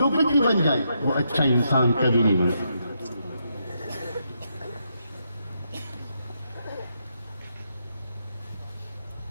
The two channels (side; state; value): both; inverted; correlation -0.80